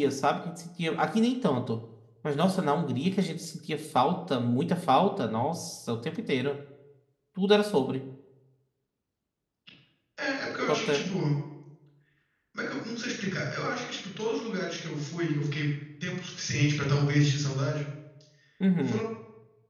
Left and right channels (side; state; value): both; identical; correlation 1.00